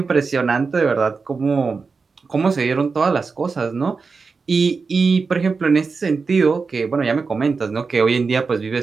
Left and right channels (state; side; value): quieter; left; 4.7 dB